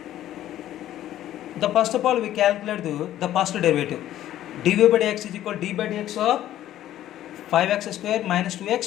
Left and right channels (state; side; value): quieter; right; 12.8 dB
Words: The first of all we calculate the first derivative. dy by dx is equal to d by dx of 5x square minus